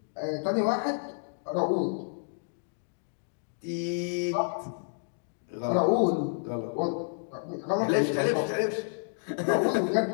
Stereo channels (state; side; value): silent; right; digital silence